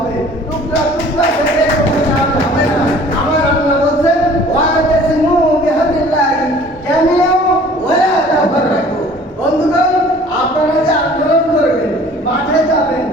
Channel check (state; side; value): normal; both; correlation 0.50